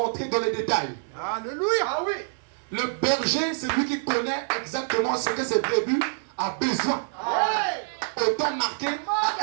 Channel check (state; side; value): silent; left; digital silence